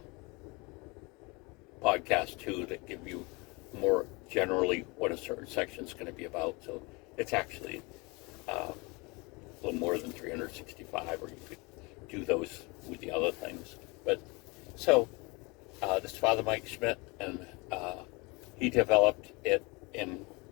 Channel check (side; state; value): right; quieter; 27.2 dB